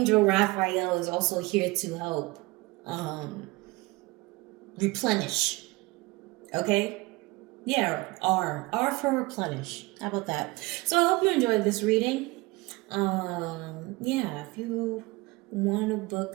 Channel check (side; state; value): left; quieter; 23.2 dB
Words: Raphael is also here to help replenish. Okay? Yeah, R for replenish. How about that? So I hope you enjoyed this reading. If you want to